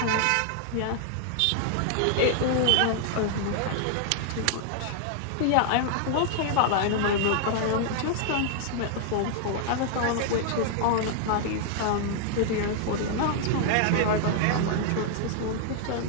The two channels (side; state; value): both; different; correlation 0.00